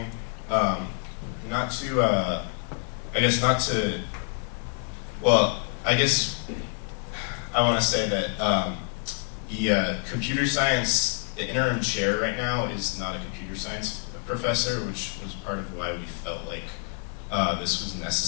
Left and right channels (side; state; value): right; quieter; 38.8 dB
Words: not to, I guess I want to say that the computer science, the interim chair right now is not a computer science professor, which was part of why we felt like this was